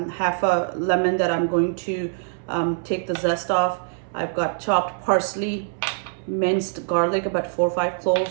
a lemon that I'm going to take the zest off. I've got chopped parsley, minced garlic, about 4 or 5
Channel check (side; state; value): left; silent; 63 dB below the other